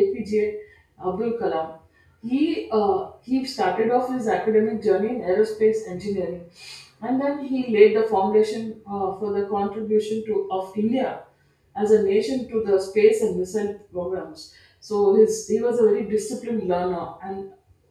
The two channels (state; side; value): identical; both; correlation 1.00